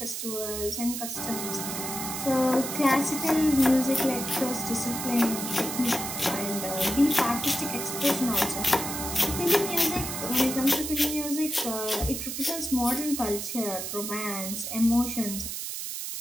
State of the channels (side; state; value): right; noise; hiss, 5 dB below the sound